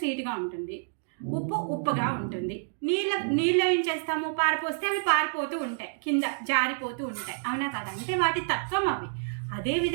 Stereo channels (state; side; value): silent; left; digital silence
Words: ఉంటుంది, ఉప్పు ఉప్పుగా ఉంటుంది. నీళ్ళు ఏం చేస్తాము, పారిపోస్తే అవి పారిపోతూ ఉంటాయి, కింద జారిపోతూ ఉంటాయి, అవునా కదా? అంటే వాటి తత్వం అవి.